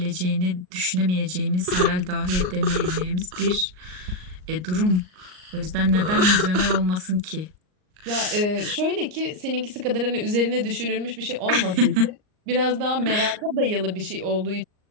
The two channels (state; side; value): late; left; 38 ms